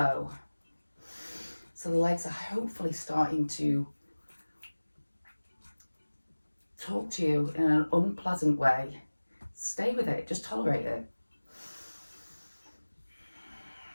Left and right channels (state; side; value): inverted; both; correlation -1.00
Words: So the legs are hopefully starting to talk to you in an unpleasant way. Stay with it, just tolerate it.